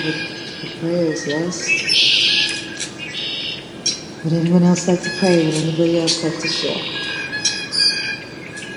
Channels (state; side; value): identical; both; correlation 1.00